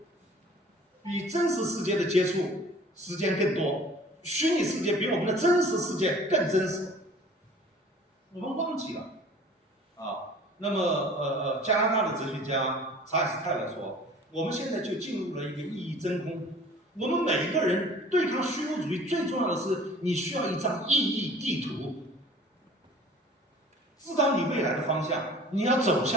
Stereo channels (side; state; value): both; normal; correlation 0.48